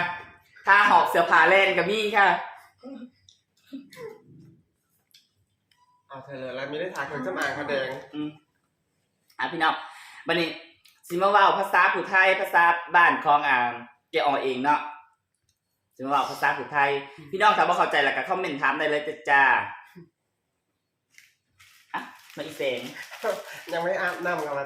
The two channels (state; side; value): identical; both; correlation 1.00